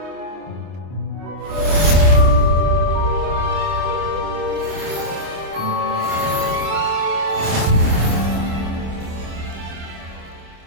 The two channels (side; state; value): left; late; 26 ms